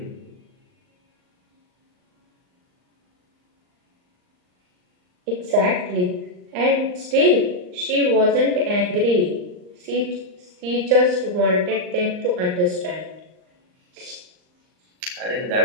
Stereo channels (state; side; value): late; left; 39 ms